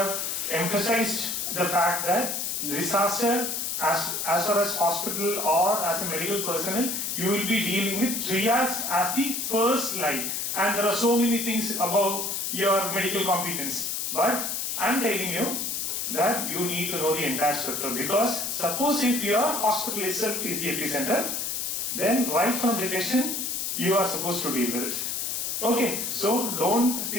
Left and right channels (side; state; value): left; noise; hiss, 2 dB below the sound